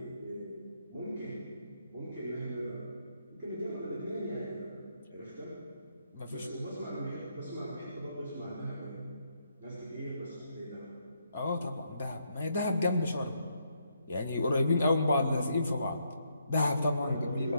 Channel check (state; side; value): inverted; both; correlation -0.76